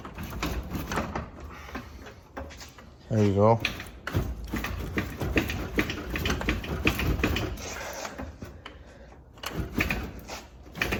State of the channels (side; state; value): both; identical; correlation 1.00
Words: There you go.